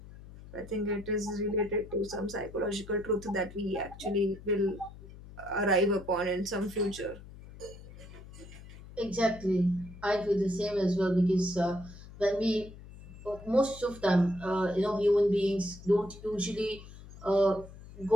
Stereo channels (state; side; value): noise; left; hum, 17 dB below the sound